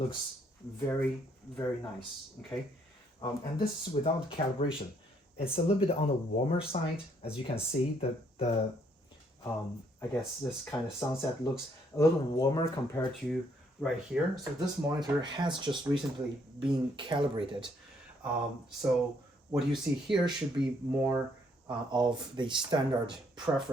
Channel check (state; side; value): normal; both; correlation 0.69